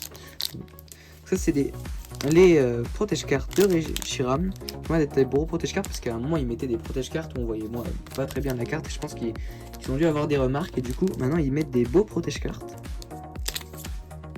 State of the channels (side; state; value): both; identical; correlation 1.00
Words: Ça c'est les protège-cartes de Reshiram. Moi d'être des gros protège-cartes parce qu'à un moment ils mettaient des protège-cartes où on voyait moi pas très bien la carte. Et je pense qu'ils ont dû avoir des remarques et du coup maintenant ils mettent des beaux protège-cartes.